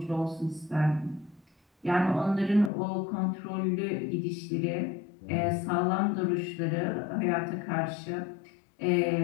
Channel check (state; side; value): drops out; right; at 2.7 s